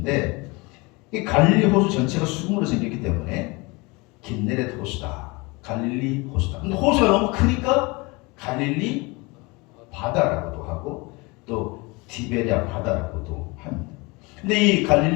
이 갈릴리 호수 전체가 수금으로 생겼기 때문에 긴네렛 호수다. 갈릴리 호수다. 근데 호수가 너무 크니까 갈릴리 바다라고도 하고 또 티베리아 바다라고도 합니다. 근데 이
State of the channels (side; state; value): right; quieter; 26.0 dB